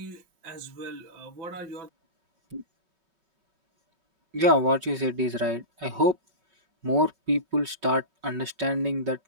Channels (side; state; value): left; late; 5.3 ms